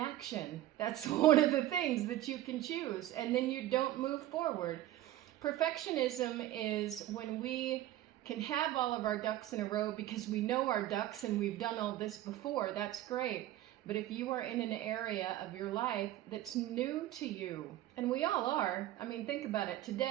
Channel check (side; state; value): left; quieter; 14.2 dB